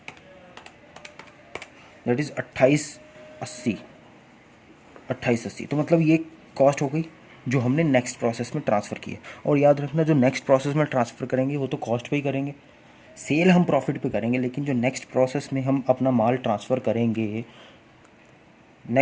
दैट इज़ 2880। तो मतलब ये कॉस्ट हो गई जो हमने नेक्स्ट प्रोसेस में ट्रांसफ़र की है। और याद रखना जो नेक्स्ट प्रोसेस में ट्रांसफ़र करेंगे वो तो कॉस्ट पे ही करेंगे, सेल हम प्रॉफिट पे करेंगे, लेकिन जो नेक्स्ट प्रोसेस में हम अपना माल ट्रांसफ़र करेंगे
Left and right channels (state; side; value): identical; both; correlation 1.00